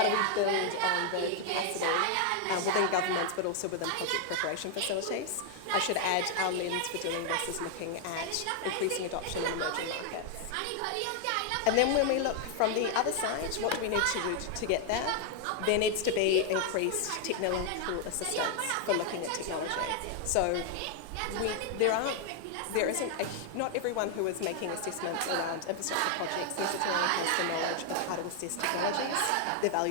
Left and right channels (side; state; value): both; different; correlation 0.00